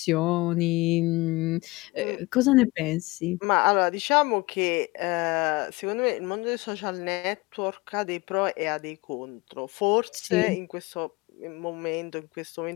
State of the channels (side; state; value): right; quieter; 22.7 dB